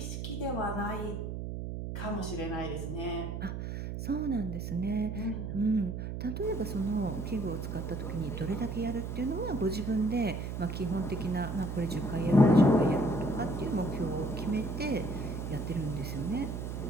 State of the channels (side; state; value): right; noise; hum, 5 dB below the sound